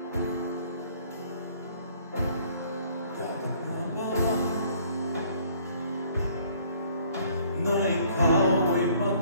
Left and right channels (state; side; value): inverted; both; correlation -0.59